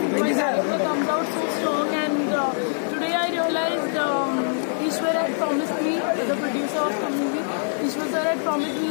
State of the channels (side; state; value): right; silent; 56 dB below the other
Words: My character comes out so strong, and today I realized Ishwar had promised me, the producer of the movie, Ishwar sir had promised me